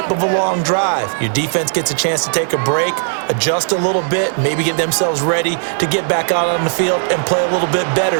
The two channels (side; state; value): left; silent; 69 dB below the other